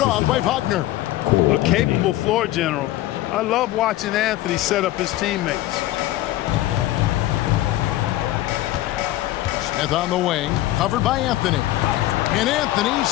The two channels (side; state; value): right; quieter; 15.6 dB